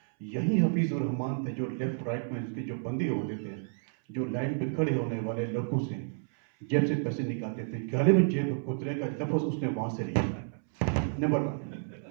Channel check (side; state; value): left; silent; 57 dB below the other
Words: यही हफीज़ उर रहमान थे जो लेफ्ट राइट में उसके जो बंदी होते थे, जो लाइन पे खड़े होने वाले लोगों से जेब से पैसे निकालते थे। गले में जेब कुतरे का लफ्ज़ उसने वहाँ से लिया। नंबर 1।